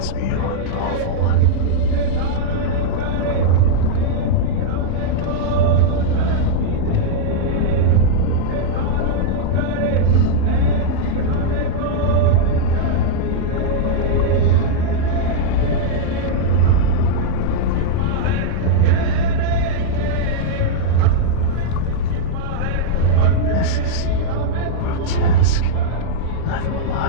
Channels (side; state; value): both; different; correlation -0.02